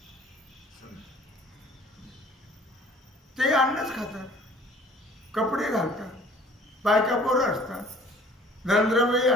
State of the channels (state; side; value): normal; both; correlation 0.52